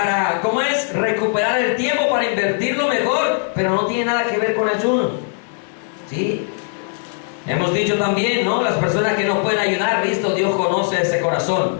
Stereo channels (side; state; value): right; silent; 62 dB below the other